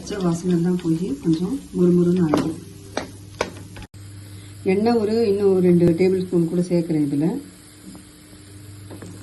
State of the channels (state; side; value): identical; both; correlation 1.00